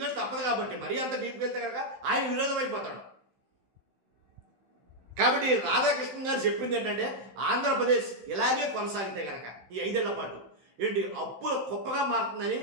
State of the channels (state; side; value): late; left; 16 ms